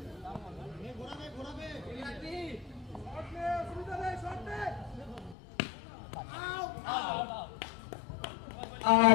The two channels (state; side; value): drops out; right; at 5.4 s